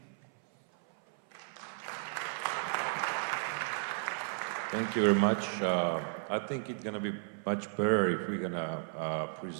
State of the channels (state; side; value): silent; left; 55 dB below the other